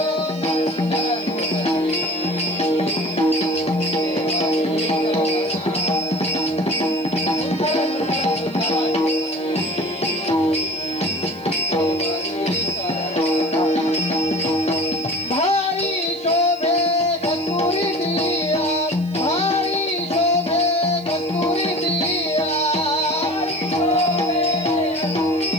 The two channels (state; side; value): noise; right; hiss, 27 dB below the sound